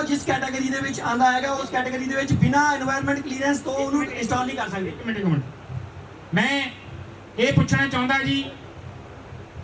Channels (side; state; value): both; identical; correlation 1.00